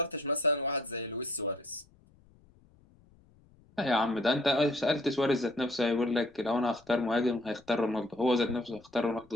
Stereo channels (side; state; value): left; noise; rumble, 29 dB below the sound